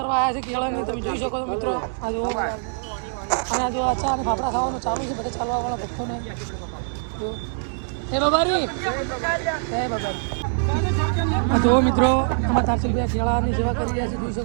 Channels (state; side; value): silent; left; digital silence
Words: આવ્યા છે કેળાની, તમે જોઈ શકો છો મિત્રો. આ જુઓ આ જો અચ્છા અને ફાફડા ખાવાનું ચાલુ છે બધા ચાલવાવાળા ભક્તોને. હે બાબારી. હે બાબારી. આ જુઓ મિત્રો અમારા તારસિંહભાઈ કેળાની સેવા કરી રહ્યા છે, જોઈ